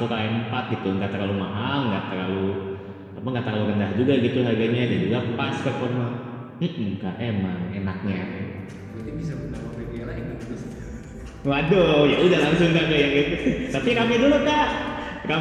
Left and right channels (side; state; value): both; identical; correlation 1.00